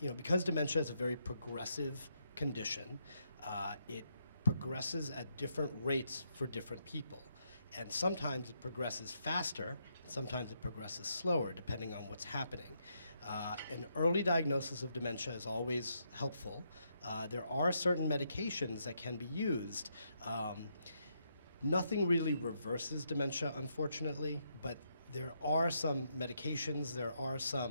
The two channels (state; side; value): inverted; both; correlation -0.78